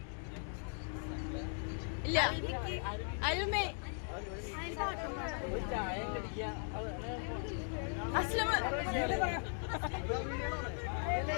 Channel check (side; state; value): right; silent; 52 dB below the other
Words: ഇല്ല അരുമേ അസ്ലം